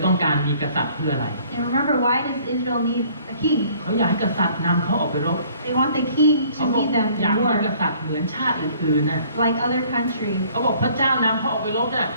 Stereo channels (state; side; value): inverted; both; correlation -0.57